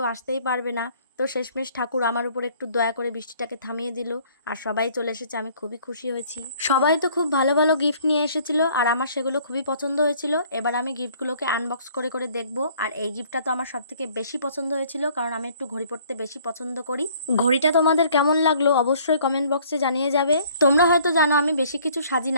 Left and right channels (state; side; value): inverted; both; correlation -0.58